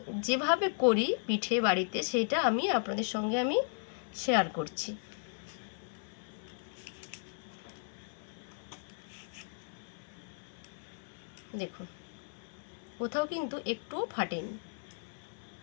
যেভাবে করি পিঠে বাড়িতে সেটা আমি আপনাদের সঙ্গে আমি শেয়ার করছি। দেখুন কোথাও কিন্তু একটুও ফাটেনি।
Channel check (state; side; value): silent; right; 54 dB below the other